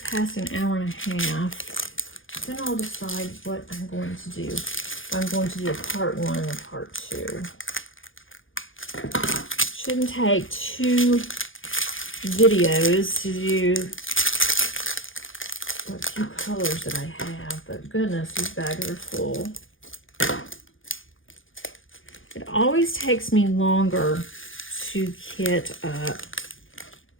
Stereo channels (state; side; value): late; right; 0.58 ms